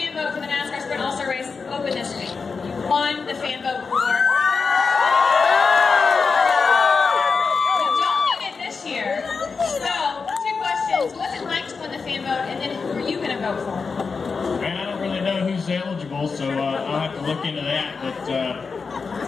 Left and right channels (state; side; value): quieter; right; 4.9 dB